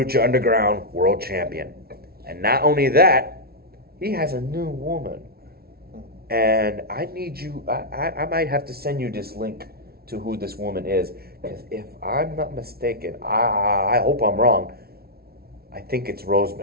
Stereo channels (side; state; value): left; late; 0.44 ms